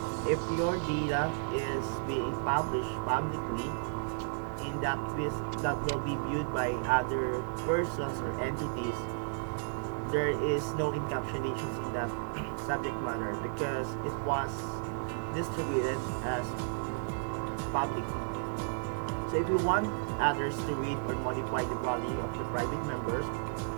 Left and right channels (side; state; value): left; silent; 56 dB below the other